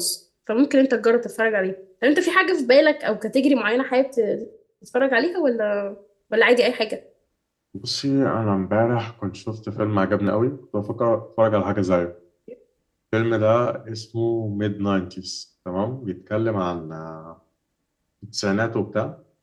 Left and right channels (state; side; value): identical; both; correlation 1.00